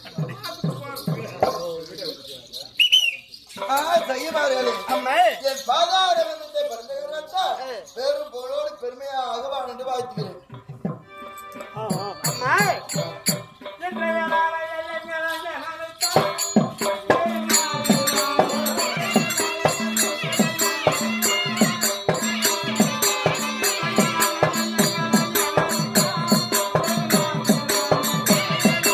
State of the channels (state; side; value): identical; both; correlation 1.00